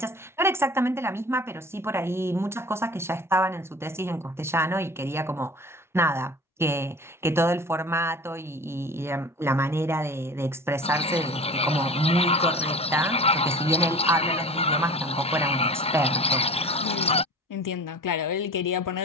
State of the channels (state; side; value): normal; both; correlation 0.39